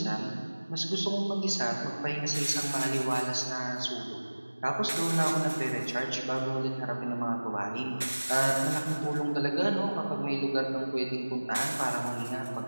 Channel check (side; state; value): both; inverted; correlation -1.00